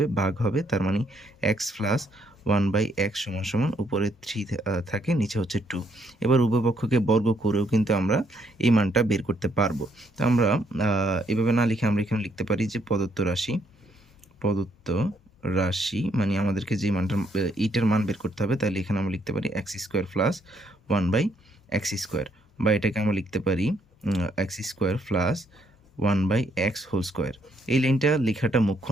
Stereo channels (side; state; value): both; normal; correlation 0.72